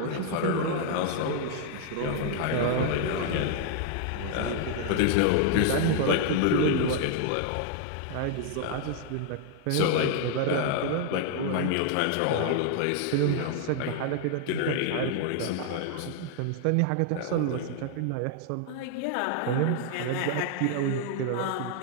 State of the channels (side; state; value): both; different; correlation 0.00